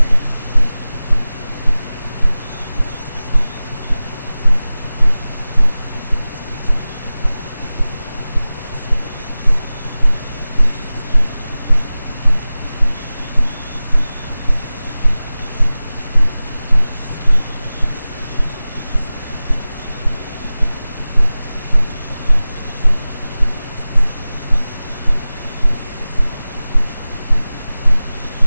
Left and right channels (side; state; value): both; inverted; correlation -0.97